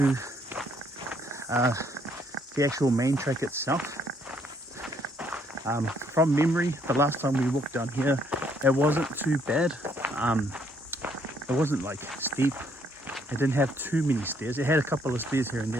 the actual main track itself. From memory, the last time we walked down here, it wasn't too bad. It wasn't like steep. It didn't have too many stairs. It had a couple of stairs here and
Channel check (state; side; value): normal; both; correlation 0.68